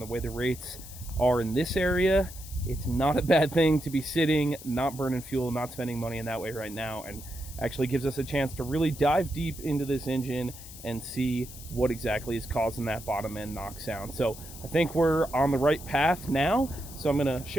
way the rates are in this area, it's not a bad thing to be sitting, not burning fuel, not spending money in that way right now, and actually gives us a chance to really dive deep into this engine and see what exactly is causing that bottom end knock sound. So I think we're on the right path now. So I'm gonna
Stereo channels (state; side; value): noise; left; hiss, 15 dB below the sound